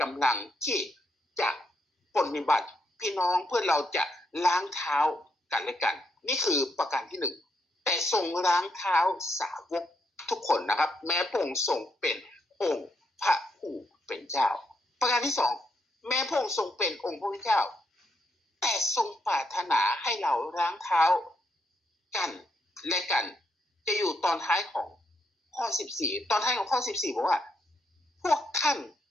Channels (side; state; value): both; normal; correlation 0.78